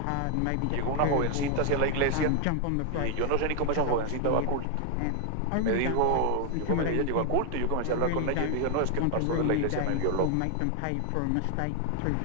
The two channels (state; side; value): different; both; correlation 0.00